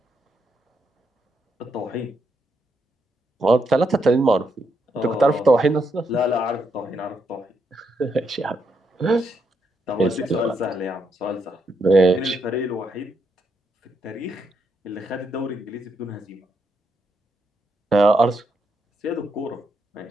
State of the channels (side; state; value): both; normal; correlation 0.79